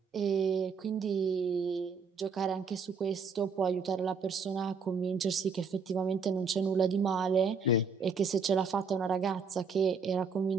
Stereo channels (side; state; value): left; quieter; 5.0 dB